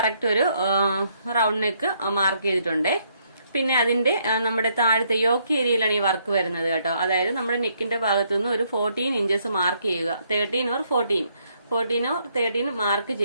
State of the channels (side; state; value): both; inverted; correlation -0.71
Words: ഒരു റൗണ്ട് നെക്ക് മാർക്ക് ചെയ്തിട്ടുണ്ട്. പിന്നെ അതിന്റെ നമ്മുടെ താഴത്തെ യോക്ക് ഏരിയയിലാണ് ഈ വർക്ക് വരുന്നത് കേട്ടോ. അതായത് നമ്മുടെ നെക്കിന്റെ ഭാഗത്തു നിന്ന് ഒരു 14 ഇഞ്ചസ് മാർക്ക് ചെയ്യുക. 13 or 13 മാർക്ക്